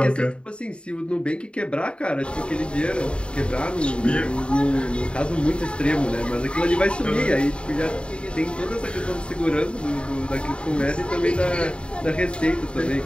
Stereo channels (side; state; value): right; late; 0.055 ms